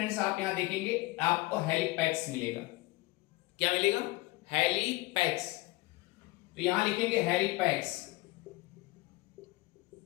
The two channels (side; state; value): right; quieter; 21.6 dB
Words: आप यहां देखेंगे आपको हेलिपैक्स मिलेगा। क्या मिलेगा? हेलिपैक्स। तो यहां लिखेंगे हेलिपैक्स।